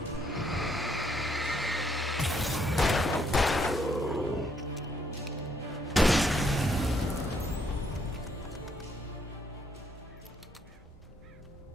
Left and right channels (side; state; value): both; normal; correlation 0.71